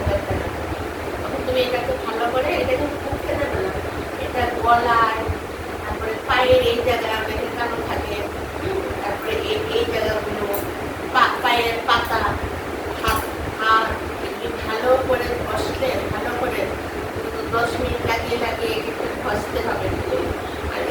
টাকা। তখন তুমি এটাকে ভালো করে, এটা কিন্তু মুখে দেবে না, এটা গলায়, তারপরে পায়ের এই জায়গায় অনেকের কালো থাকে, তারপরে এই জায়গাগুলো, পায়ের পাতা, হাত হাত এগুলি ভালো করে ঘষলে, ভালো করে 10 মিনিট লাগিয়ে লাগিয়ে একটু ঘষতে হবে। আর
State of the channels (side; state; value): both; identical; correlation 1.00